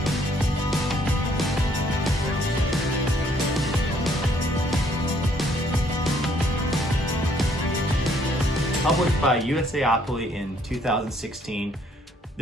Published by USAopoly in 2016,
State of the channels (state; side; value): normal; both; correlation 0.65